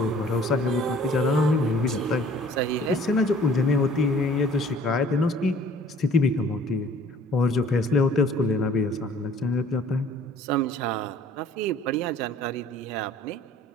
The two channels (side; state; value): both; normal; correlation 0.54